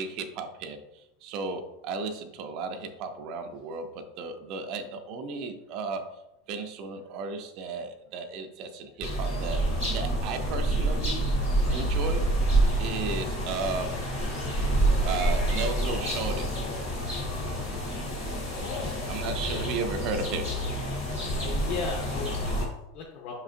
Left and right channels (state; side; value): normal; both; correlation 0.48